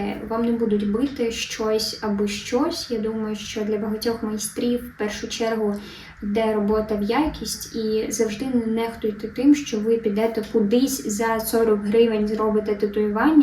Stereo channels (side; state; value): both; identical; correlation 1.00